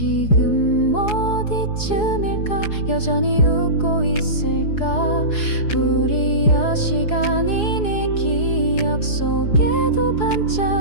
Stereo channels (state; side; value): late; right; 4.7 ms